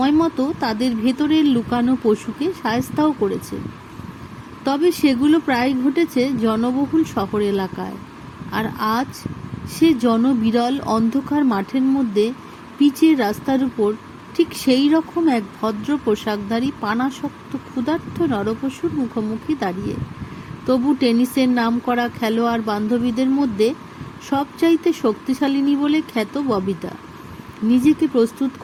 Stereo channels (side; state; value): both; identical; correlation 1.00